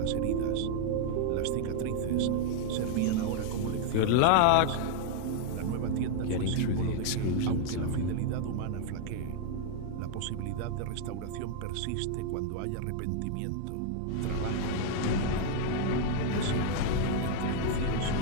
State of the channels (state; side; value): different; both; correlation 0.00